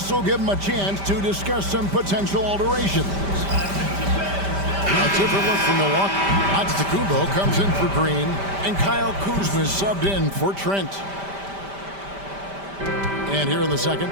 will give him a chance to discuss some potential alterations. A different look from Milwaukee. Antetokounmpo comes in for Green, and Kyle Kuzma is subbed in for Trent. And here in the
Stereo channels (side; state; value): left; late; 5.1 ms